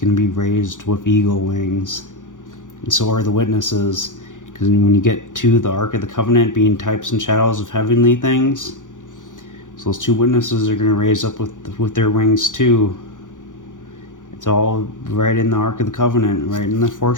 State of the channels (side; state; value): right; late; 0.87 ms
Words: to be raised with eagle wings. And so are the witnesses. Because when you get to the Ark of the Covenant being types and shadows of heavenly things, so those two witnesses are going to raise up with their wings too. It's all right in the Ark of the Covenant, right in the